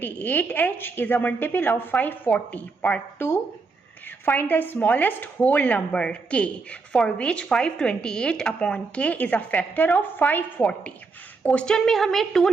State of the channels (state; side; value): quieter; left; 4.3 dB